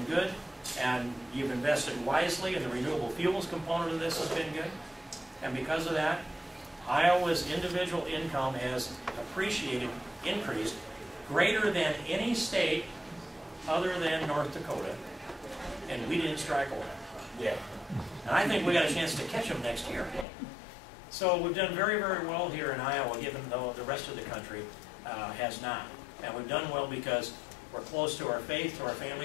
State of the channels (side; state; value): right; drops out; at 20.2 s